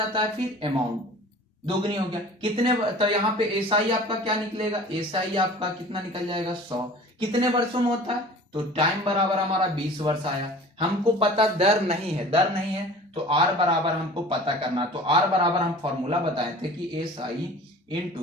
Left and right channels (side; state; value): both; normal; correlation 0.43